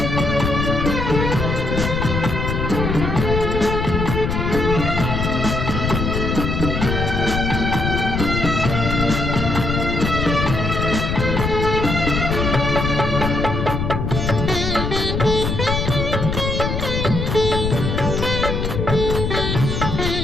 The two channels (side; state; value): left; noise; rumble, 1 dB below the sound